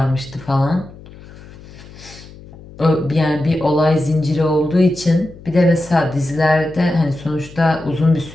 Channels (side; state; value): left; noise; hum, 19 dB below the sound